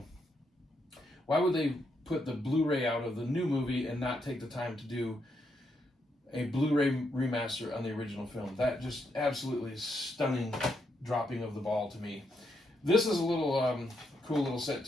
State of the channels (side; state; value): both; normal; correlation 0.79